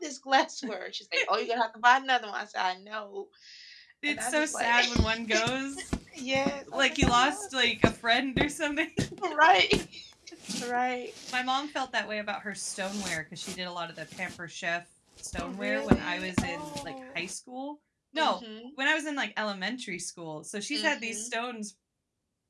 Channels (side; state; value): both; identical; correlation 1.00